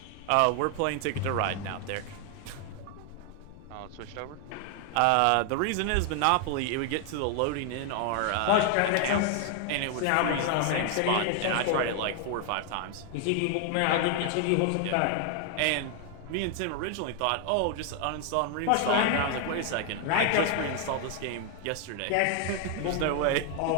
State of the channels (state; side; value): different; both; correlation 0.00